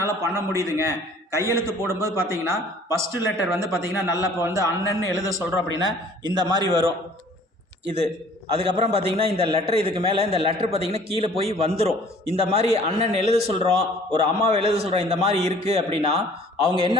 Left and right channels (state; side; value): normal; both; correlation 0.53